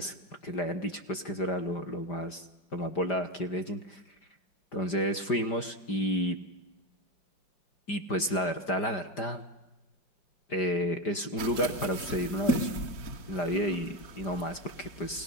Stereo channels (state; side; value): late; right; 5.0 ms